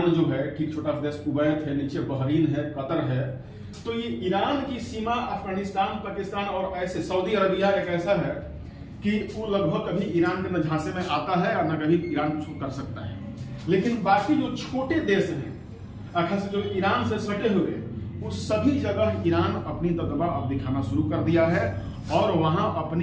जो है ठीक छोटा देश कुवैत है, नीचे बहरीन है, कतर है, तो ये ईरान की सीमा अफगानिस्तान, पाकिस्तान और ऐसे सऊदी अरबिया एक ऐसा है कि वो लगभग कभी ईरान के न झांसे में आता है और न कभी ईरान कुछ कर सकता है। लेकिन बाकी जो छोटे देश हैं खास जो ईरान से सटे हुए, वो सभी जगह ईरान अपनी दबदबा अब दिखाना शुरू कर दिया है और वहां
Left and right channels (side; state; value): both; identical; correlation 1.00